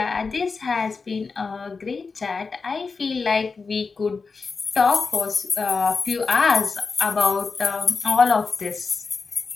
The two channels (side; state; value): right; quieter; 4.6 dB